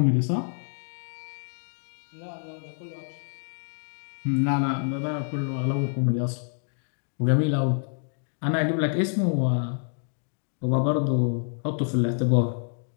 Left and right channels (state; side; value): silent; right; digital silence